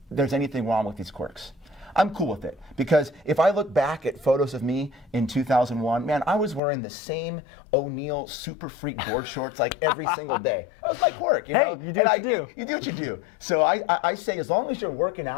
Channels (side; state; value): right; drops out; at 6.6 s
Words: there's anything wrong with these quirks. I'm cool with it because if I look back at photos of me in 2001, man, I was wearing the same O'Neill Super Freak board shorts like every single day. That was my quirk, you know? You do what you do. You do what you do. So I say as long as you're working